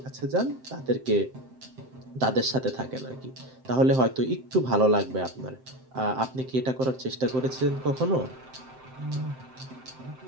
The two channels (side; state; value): left; late; 7.7 ms